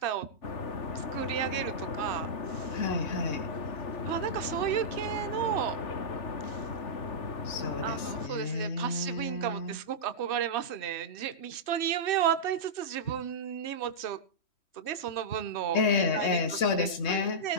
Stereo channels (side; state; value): right; late; 3.2 ms